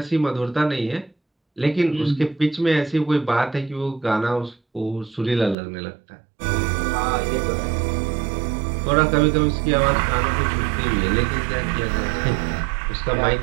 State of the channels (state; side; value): drops out; left; at 5.6 s